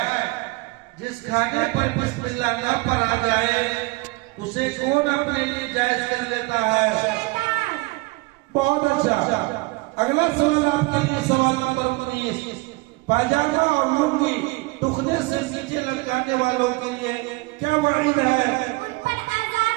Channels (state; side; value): quieter; left; 24.0 dB